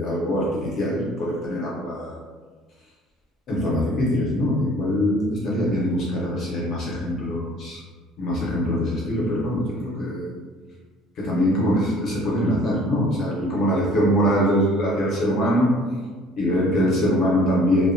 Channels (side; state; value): both; normal; correlation 0.53